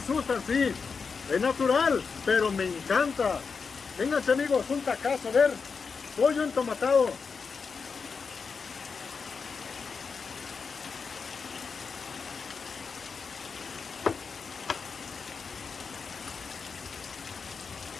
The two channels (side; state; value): right; quieter; 5.3 dB